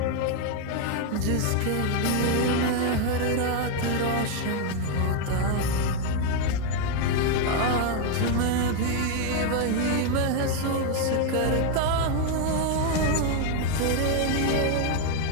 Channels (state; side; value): different; both; correlation 0.01